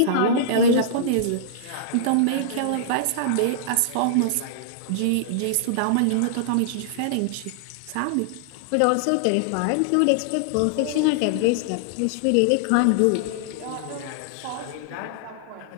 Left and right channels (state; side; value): different; both; correlation -0.01